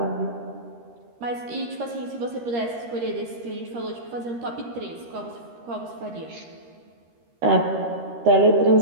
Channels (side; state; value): left; late; 13 ms